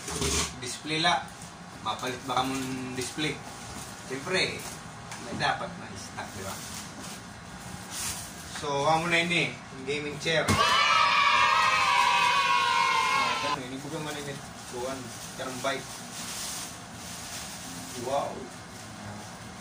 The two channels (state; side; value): identical; both; correlation 1.00